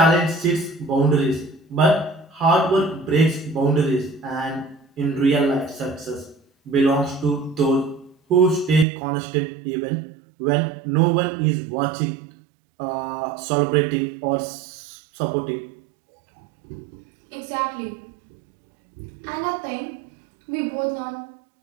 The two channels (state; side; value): drops out; left; at 8.8 s